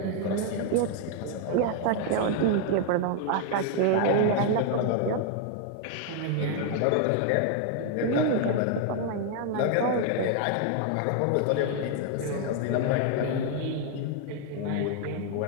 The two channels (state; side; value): different; both; correlation 0.00